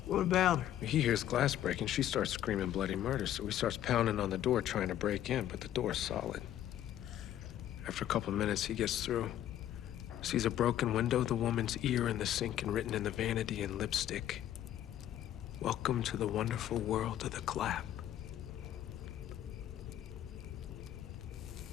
What about her? He hears glass breaking. She starts screaming bloody murder, so he starts pounding on the door trying to break in, but the door's solid. After a couple of minutes, he gets through. Sees a broken window, the woman's ear in the sink, and written in the vanity in lipstick, "Welcome to the wonderful world of the clap."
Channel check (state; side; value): quieter; right; 11.7 dB